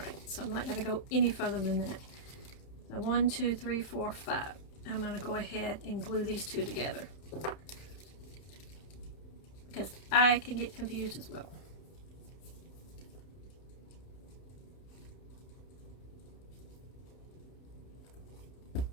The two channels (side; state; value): right; late; 31 ms